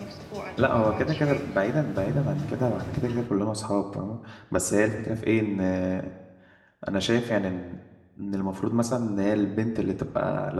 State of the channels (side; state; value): both; identical; correlation 1.00